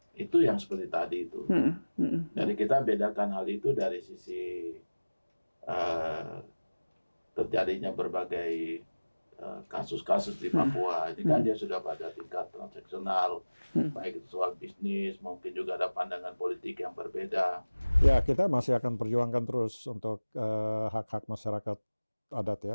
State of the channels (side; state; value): both; inverted; correlation -1.00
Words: itu yang seperti tadi itu. Jadi kita bedakan hal itu dari sisi terjadinya berbagai kasus-kasus di Papua. Ini kan dia sudah pada tingkat transaksional, baik itu soal bisnis, mungkin juga ada pandangan politik yang berbeda. Ya, kita masih akan perjuangkan terus untuk hak-hak masyarakat adat